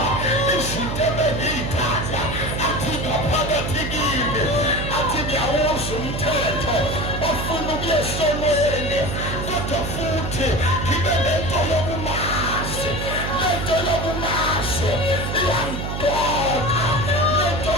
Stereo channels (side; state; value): right; noise; hum, 4 dB below the sound